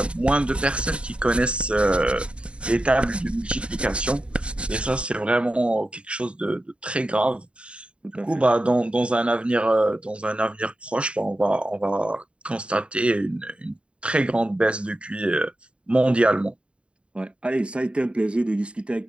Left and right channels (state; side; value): late; left; 0.057 ms